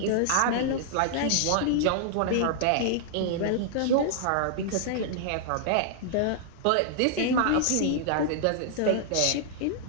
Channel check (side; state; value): both; different; correlation -0.01